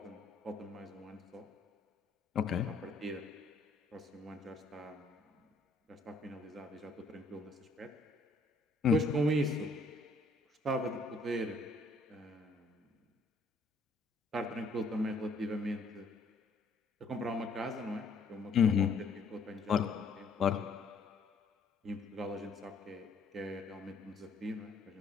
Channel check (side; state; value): right; quieter; 3.3 dB